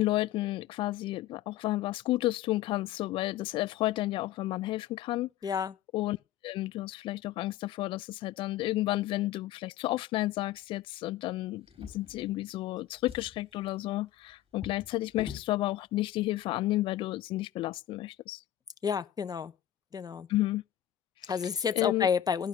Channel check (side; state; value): right; quieter; 12.7 dB